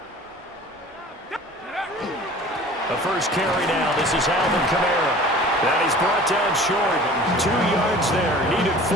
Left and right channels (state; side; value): normal; both; correlation 0.44